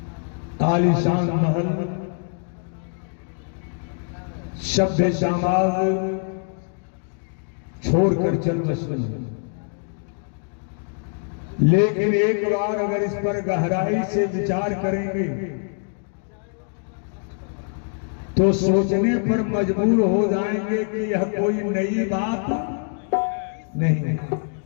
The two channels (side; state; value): right; silent; 56 dB below the other